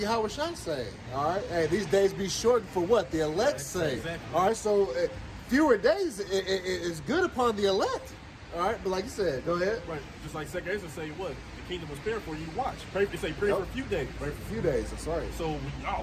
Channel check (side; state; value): both; identical; correlation 1.00